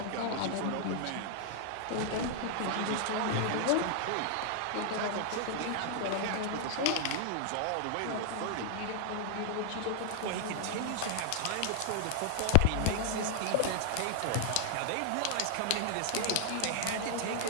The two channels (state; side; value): different; both; correlation 0.00